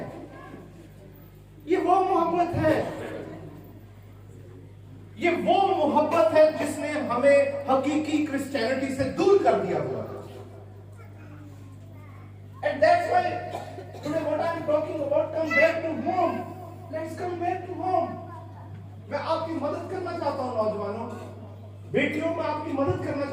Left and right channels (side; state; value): both; identical; correlation 1.00